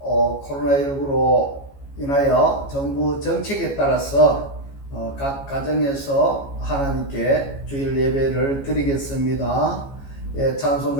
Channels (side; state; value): right; late; 14 ms